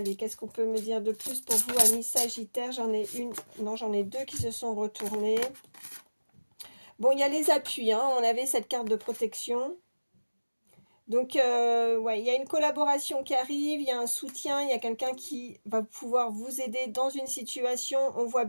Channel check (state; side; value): inverted; both; correlation -1.00